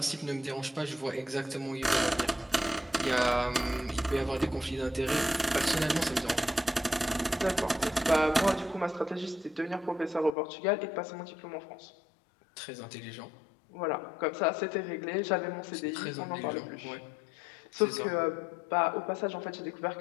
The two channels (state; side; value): drops out; right; at 10.4 s